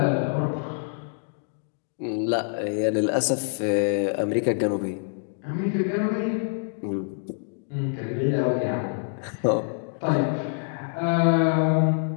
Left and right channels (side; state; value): right; silent; digital silence